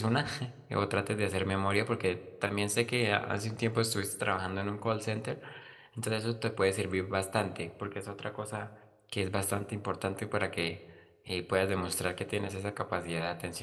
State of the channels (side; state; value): both; identical; correlation 1.00